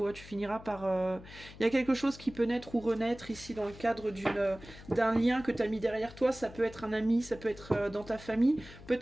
tu finiras par... Il y a quelque chose qui peut naître ou renaître ici dans le cadre d'un lien que tu as mis derrière toi. Ça peut être un ami, ça peut être dans ta famille,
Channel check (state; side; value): noise; left; hum, 17 dB below the sound